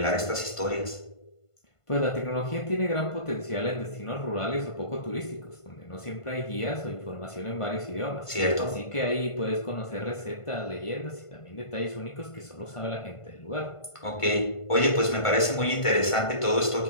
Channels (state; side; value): late; right; 1.5 ms